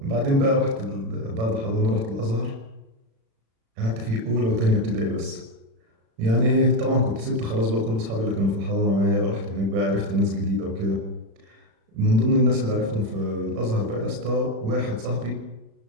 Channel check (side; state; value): left; late; 36 ms